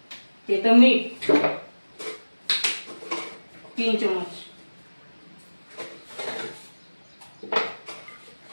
ते तर मीठ 3 चम्मच.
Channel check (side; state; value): both; inverted; correlation -1.00